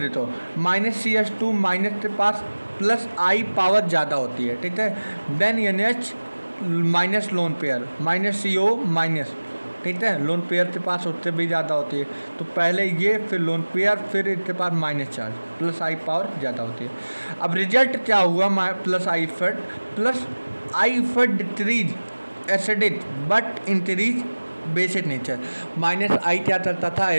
-CS2 माइनस के पास प्लस आई पावर ज़्यादा होती है, ठीक है। Then NH minus lone pair -CO minus, ठीक है, लोन पेयर के पास उससे भी ज़्यादा होती है। तो पहले ये, फिर लोन पेयर, फिर इसके पास माइनस चार्ज, प्लस आई पावर ज़्यादा होती है। अब रिजल्ट क्या हुआ, प्लस आई फट decrease acidic but increase basic nature. Minus I क्या करता था,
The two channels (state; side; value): inverted; both; correlation -1.00